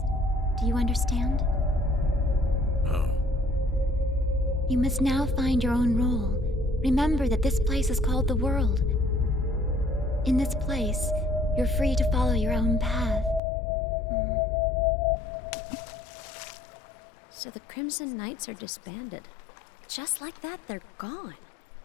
Do you understand? Oh. You must now find your own role. Remember that this place is called the world. In this place, you're free to follow your own path. So the Crimson Knights are disbanded. Just like that, they're gone.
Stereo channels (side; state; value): right; drops out; at 13.4 s